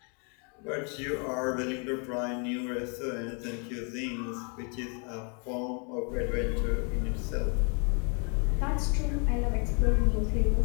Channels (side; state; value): right; quieter; 37.0 dB